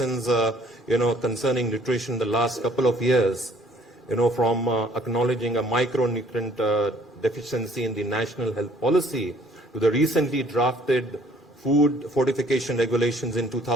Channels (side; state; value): both; normal; correlation 0.58